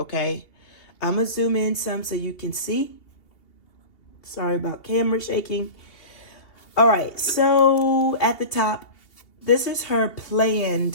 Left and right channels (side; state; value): right; late; 2.8 ms